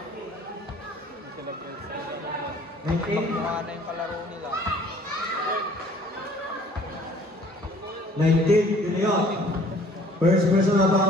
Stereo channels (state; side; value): normal; both; correlation 0.55